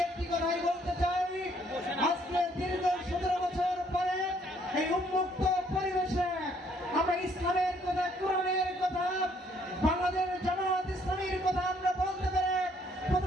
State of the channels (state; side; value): normal; both; correlation 0.66